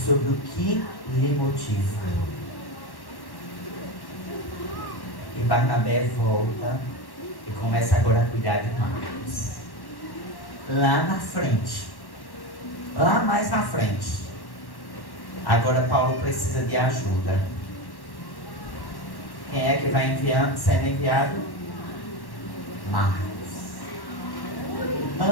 o que lhe motiva. E Barnabé volta e começa agora a cuidar de Marcos. Lá na frente, lá mais na frente, agora Paulo precisa de ajuda. Quem é que vai sendo enviado? Marcos.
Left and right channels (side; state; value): right; late; 1.1 ms